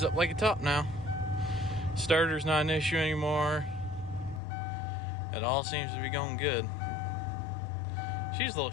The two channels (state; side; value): drops out; right; at 4.4 s